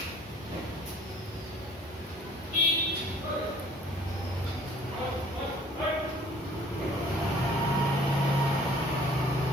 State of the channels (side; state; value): both; normal; correlation 0.55